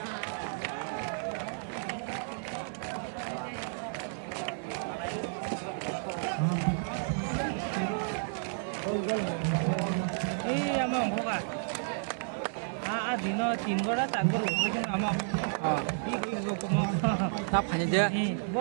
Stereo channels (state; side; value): silent; left; 57 dB below the other